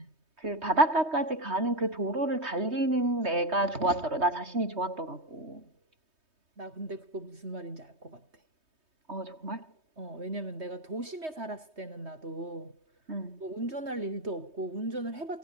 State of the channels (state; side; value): late; left; 3.2 ms